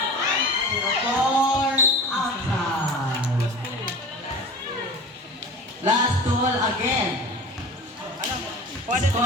0-4 outside. Last duel again.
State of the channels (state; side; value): normal; both; correlation 0.36